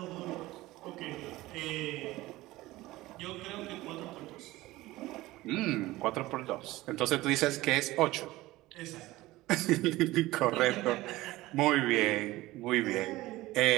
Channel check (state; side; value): quieter; left; 18.3 dB